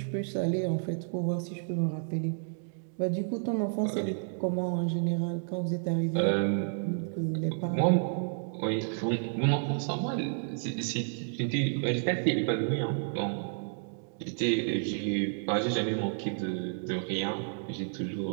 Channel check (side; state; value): left; silent; digital silence